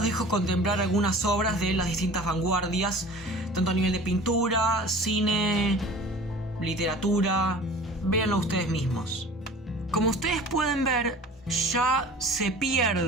dejo contemplar algunas obras de las distintas vanguardias, tanto a nivel de pintura, cine, literatura. Véanlo ustedes mismos. Como ustedes pueden ver, ya se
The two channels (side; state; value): both; normal; correlation 0.43